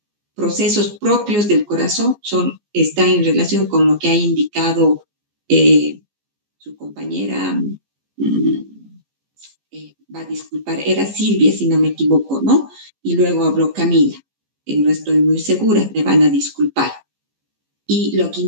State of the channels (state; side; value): late; left; 14 ms